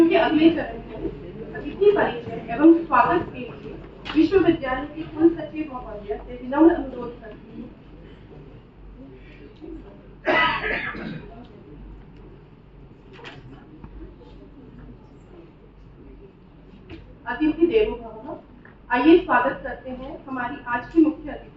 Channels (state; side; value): identical; both; correlation 1.00